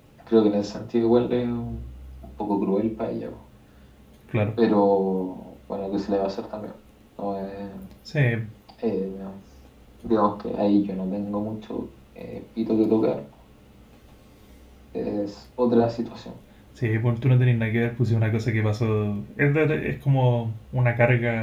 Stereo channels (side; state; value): both; identical; correlation 1.00